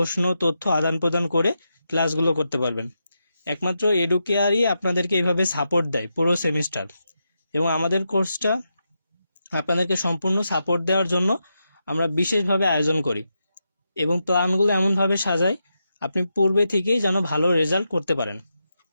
তথ্য আদান প্রদান করে ক্লাসগুলো করতে পারবেন। একমাত্র এডুকেয়ারই আপনাদেরকে এইভাবে সাপোর্ট দেয় পুরো সেমিস্টার, এবং আমাদের কোর্সটা আপনাদেরকে সম্পূর্ণ সাপোর্ট দেওয়ার জন্য আমরা বিশেষভাবে আয়োজন করি এবং প্ল্যানগুলো এমনভাবে সাজাই আপনি পূর্বে থেকেই যেন ভালো রেজাল্ট করতে পারেন।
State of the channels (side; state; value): both; inverted; correlation -0.86